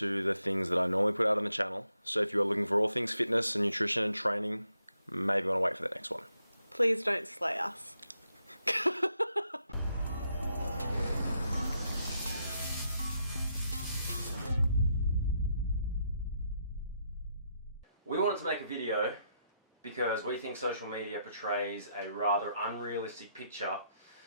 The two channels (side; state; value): both; inverted; correlation -0.78